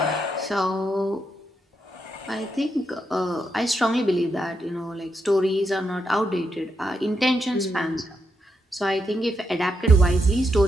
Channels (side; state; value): both; normal; correlation 0.82